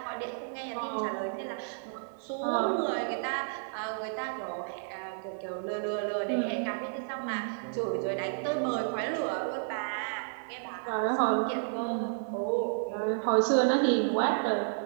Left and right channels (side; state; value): left; silent; digital silence